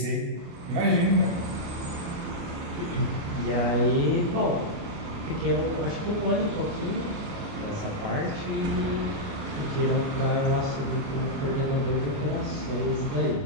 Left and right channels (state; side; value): late; left; 29 ms